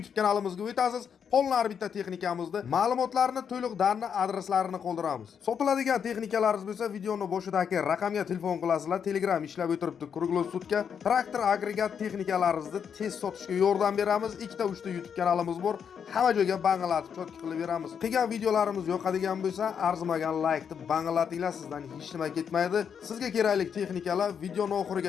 kanalimizga o'tasiz. Qolgan bitta texnikamizni, ma'lumotlarni, to'liq darni, adreslarini qoldiramiz. Sotiladigan texnikalaringiz bo'lsa, videoni boshidagi raqamga telefon qilasizlar. Telegram ishlab o'tiribdi. Kruglosutga traktor agregat texnikalaringizni tez sotishga yordam beramiz. 2-3 YouTube kanalimiz bor. Hamma joyga bang'alatib chotki qilib beramiz. Qilgan videolarimiz yoqadigan bo'lsa, arzimagan like deb bang'alatinglar, sizdan hech nima ketmaydi. Sizga kerakli texnikalar videoni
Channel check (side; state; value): right; quieter; 7.4 dB